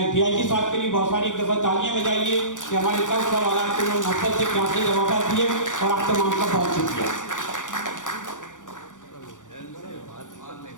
DIG साहब के लिए बहुत सारी एक दफ़ा तालियां बजाइए कि हमारे सब सवाल को नफरत से प्यार से जवाब दिए, और आप तमाम का बहुत शुक्रिया।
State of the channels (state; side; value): late; right; 0.87 ms